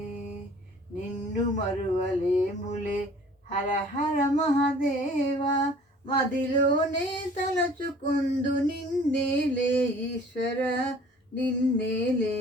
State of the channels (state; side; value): normal; both; correlation 0.51